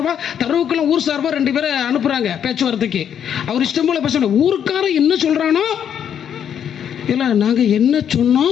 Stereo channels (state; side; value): quieter; right; 8.8 dB